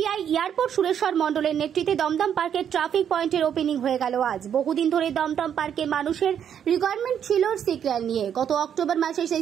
airport Sureshwar মণ্ডলের নেতৃত্বে দমদম পার্কের ট্রাফিক পয়েন্টের ওপেনিং হয়ে গেল আজ। বহুদিন ধরে দমদম পার্কে মানুষের রিকোয়ারমেন্ট ছিল সিগন্যাল নিয়ে। গত অক্টোবর মাসে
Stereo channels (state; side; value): quieter; left; 8.8 dB